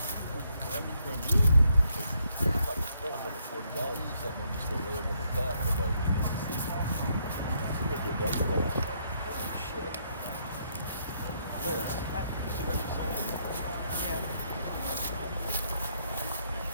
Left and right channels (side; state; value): both; inverted; correlation -0.73